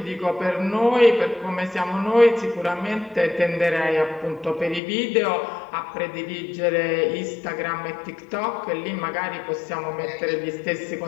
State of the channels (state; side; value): drops out; right; at 4.8 s